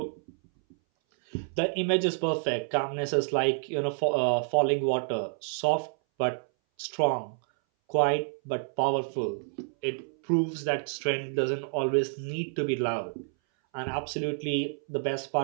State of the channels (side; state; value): left; silent; 59 dB below the other